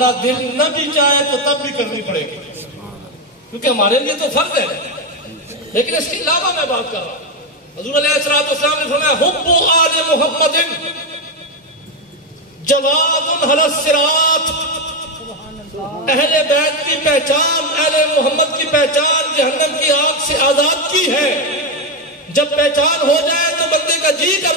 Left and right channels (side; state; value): both; normal; correlation 0.08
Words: دل نہ بھی چاہے تو تب بھی کرنی پڑے گی کیونکہ ہمارے لیے تو فرض ہے. لیکن اس کے علاوہ میں بات کر رہا ہوں. حضور علیہ السلام نے فرمایا حب آل محمد جواد علی الصراط. اہل بیت کی پہچان، اہل محمد کی پہچان جہنم کی آگ سے آزاد کی ہے. جب پہچان ہو جائے تو بندے کا جی